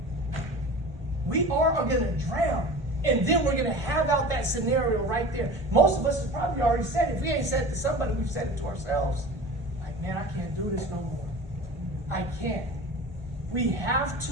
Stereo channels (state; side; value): normal; both; correlation 0.36